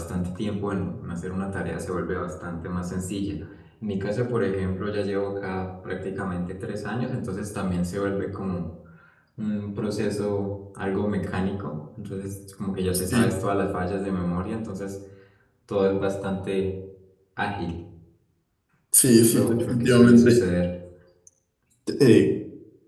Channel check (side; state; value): both; identical; correlation 1.00